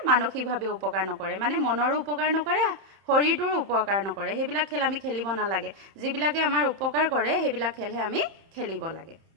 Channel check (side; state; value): left; late; 30 ms